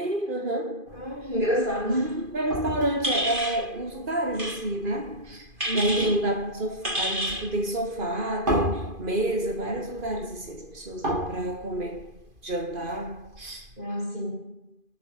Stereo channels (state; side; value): late; left; 2.5 ms